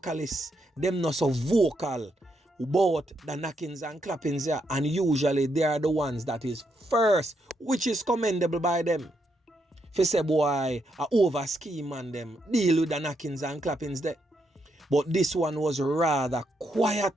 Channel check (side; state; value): both; normal; correlation 0.79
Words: them not so vocal about the knockings and clappings there. And usually they are the ones that is first, which is commendable by them. If you say, boy, I over scheme and them, deal with the knockings and clappings there. But this one was rather